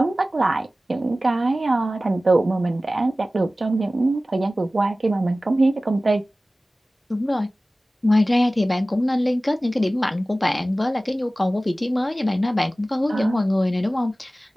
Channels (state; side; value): normal; both; correlation 0.97